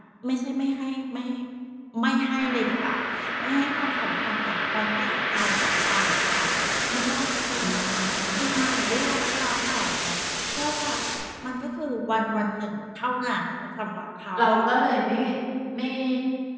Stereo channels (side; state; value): both; identical; correlation 1.00